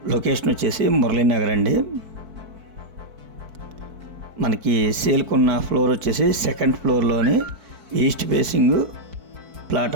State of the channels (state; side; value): late; left; 4.6 ms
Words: లొకేషన్ వచ్చేసి మురళీనగర్ అండి. మనకి సేల్కి ఉన్న ఫ్లోర్ వచ్చేసి సెకండ్ ఫ్లోర్లోని ఈస్ట్ ఫేసింగ్ ప్లాట్